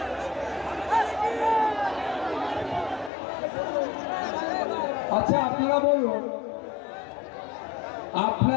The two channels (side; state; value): right; drops out; at 3.1 s